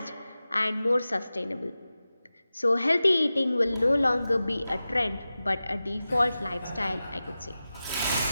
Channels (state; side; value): inverted; both; correlation -0.94